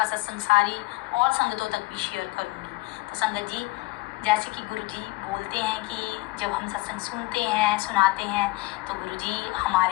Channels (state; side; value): quieter; right; 22.3 dB